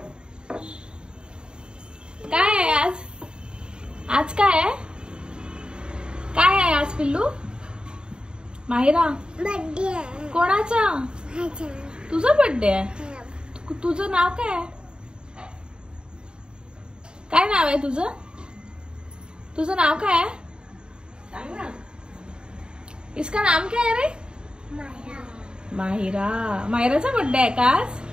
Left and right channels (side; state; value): left; late; 0.050 ms